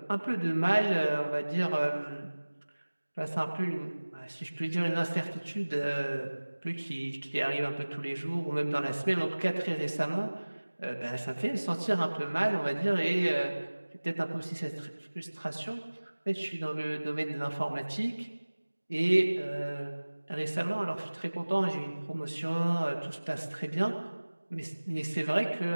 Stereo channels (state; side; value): inverted; both; correlation -1.00